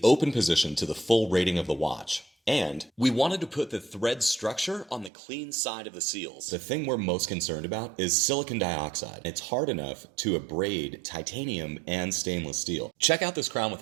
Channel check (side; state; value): left; drops out; at 5.1 s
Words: open position to the full rating of the watch. And we wanted to put the thread structure on the clean side of the seals. The thing we're most concerned about is silicon dioxide. It's hard enough to abrade titanium and stainless steel. Check out this crown with